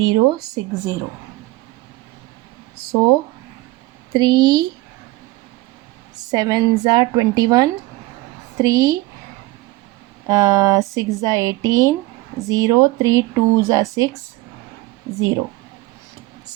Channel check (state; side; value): quieter; left; 19.8 dB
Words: So 3 7s are 21, 3 6 are 18, 0, 3 2s are 6, 0.